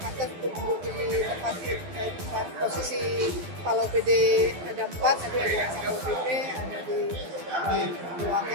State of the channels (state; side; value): late; left; 12 ms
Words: pantas untuk duduk di tempat posisi Kepala OPD ada 4, ada di SPP, ada di